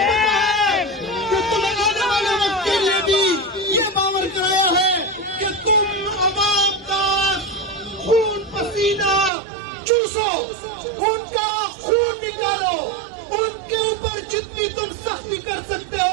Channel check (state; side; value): drops out; left; at 9.3 s